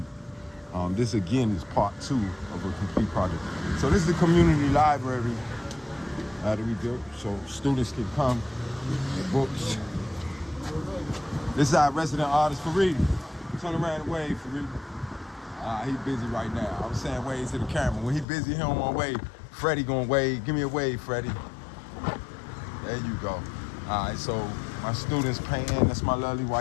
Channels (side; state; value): right; drops out; at 18.2 s